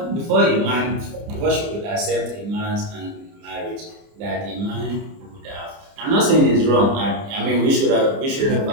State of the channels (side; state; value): left; late; 30 ms